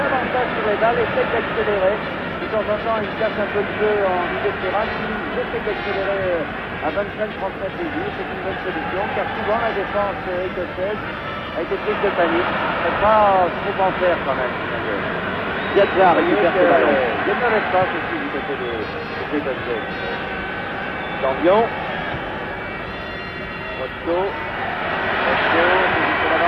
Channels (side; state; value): both; identical; correlation 1.00